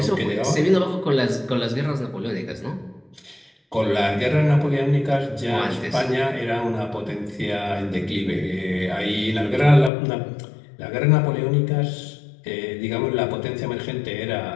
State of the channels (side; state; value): right; drops out; at 9.9 s